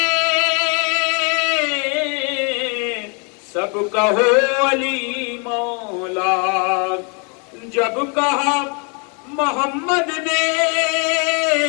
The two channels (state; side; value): quieter; right; 36.3 dB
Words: سب کہو علی مولا، جب کہا محمد نے